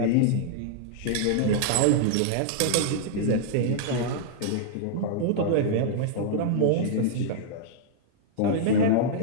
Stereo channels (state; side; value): different; both; correlation -0.01